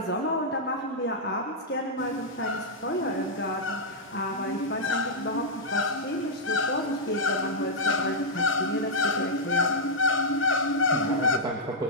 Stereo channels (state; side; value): normal; both; correlation -0.07